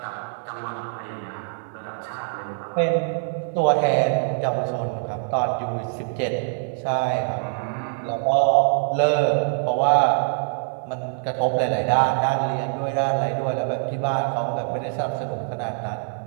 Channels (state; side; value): silent; left; 63 dB below the other